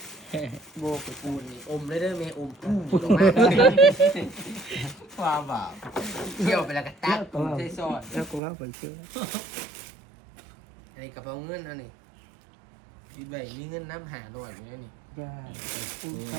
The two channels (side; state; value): left; drops out; at 8.4 s